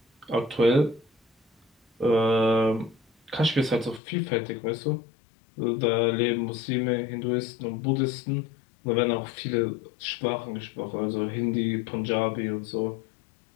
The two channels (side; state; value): right; drops out; at 4.0 s